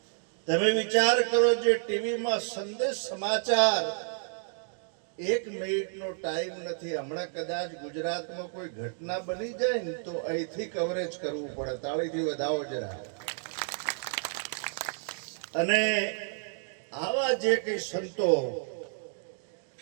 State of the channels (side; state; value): left; silent; digital silence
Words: તમે વિચાર કરો, જે ટીવીમાં સંદેશ સમાચાર, 1 મિનિટનો ટાઈમ નથી. હમણાં કદાચ ગુજરાતમાં કોઈ ઘટના બની જાય ને તો અહીંથી કવરેજ કરવું પડે. તાળીથી વધાવો જરા. અને આવા જે કઈ સંતો